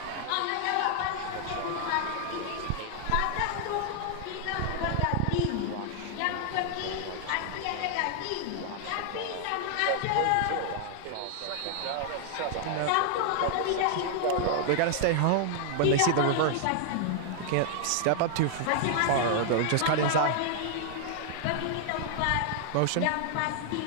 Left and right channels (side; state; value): both; different; correlation 0.00